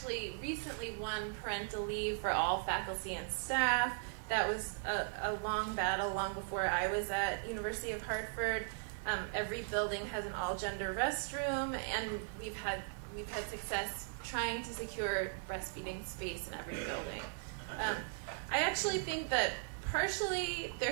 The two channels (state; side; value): silent; left; digital silence